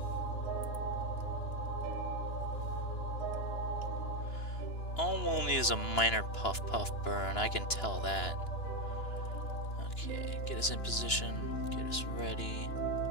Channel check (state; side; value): late; right; 2.9 ms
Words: All we'll need is a minor puff burn, I can tell that. Okay, get us in position, get us ready.